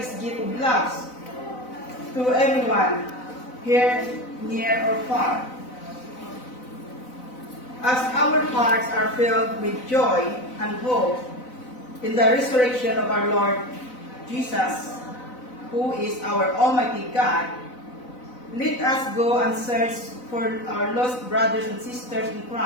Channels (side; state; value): right; late; 4.0 ms